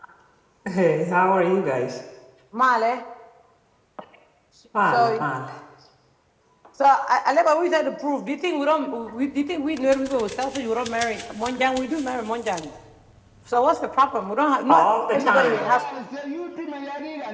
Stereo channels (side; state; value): both; identical; correlation 1.00